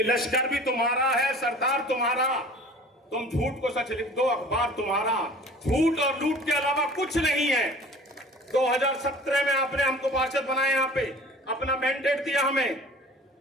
लश्कर भी तुम्हारा है, सरदार तुम्हारा, तुम झूठ को सच लिख दो, अखबार तुम्हारा, झूठ और लूट के अलावा कुछ नहीं है। 2017 में आपने हमको पार्षद बनाया, यहां पे अपना मैंडेट दिया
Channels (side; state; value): both; normal; correlation 0.45